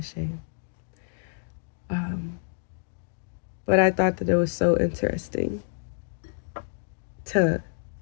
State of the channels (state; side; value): silent; right; digital silence